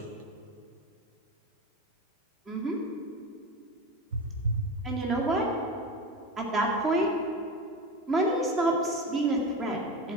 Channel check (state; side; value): normal; both; correlation 0.25